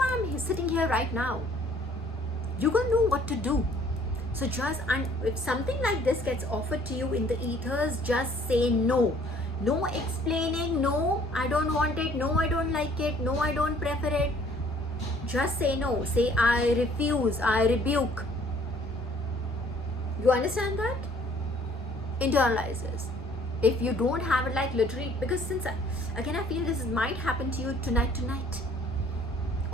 I'm sitting here right now. You're gonna know what to do. So if something like this gets offered to you in the ethers, just say no. No explaining, no, I don't want it, no, I don't like it, no, I don't prefer it. Just say no. Say, I refuse, I rebuke. You understand that? Internalize this. If you don't have it, like literally, because since again I feel this might happen to you tonight,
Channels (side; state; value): both; normal; correlation 0.58